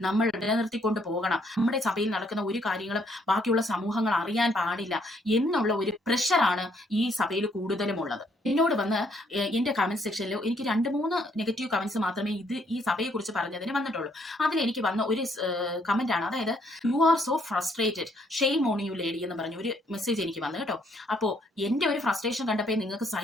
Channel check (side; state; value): both; normal; correlation 0.69